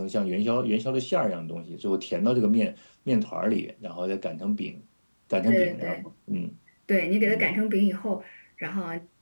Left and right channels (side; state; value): both; inverted; correlation -1.00